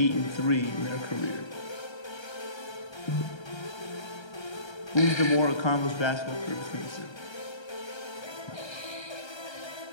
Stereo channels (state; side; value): late; right; 1.3 ms